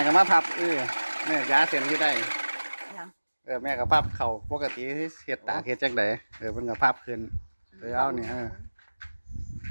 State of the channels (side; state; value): both; inverted; correlation -1.00